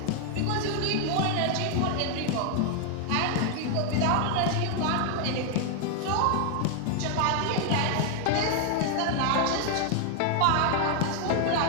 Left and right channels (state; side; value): different; both; correlation 0.00